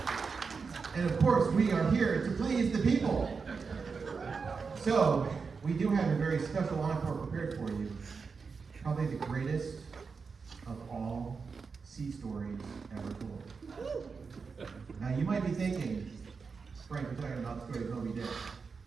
And of course, we are here to please the people. So, we do have a very special encore prepared for you. Probably the greatest of all sea stories ever told. Now, you might be thinking, Frank, we're talking about the story of Moby Dick.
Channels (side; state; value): left; quieter; 5.1 dB